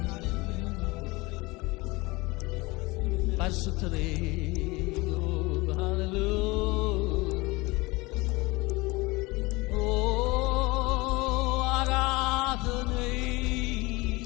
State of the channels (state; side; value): quieter; right; 23.4 dB